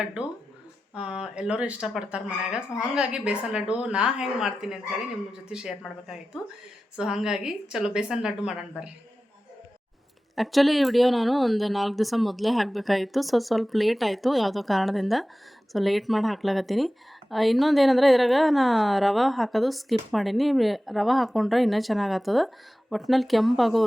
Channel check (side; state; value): both; normal; correlation 0.95